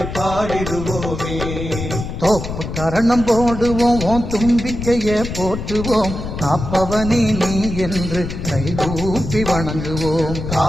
பாடிடுவோமே. தோப்பு கரணம் போடுவோம் ஓம் தும்பிக்கையே போற்றுவோம். காப்பவனே நீ என்று கைகூப்பி வணங்குவோம்.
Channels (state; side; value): noise; left; rumble, 7 dB below the sound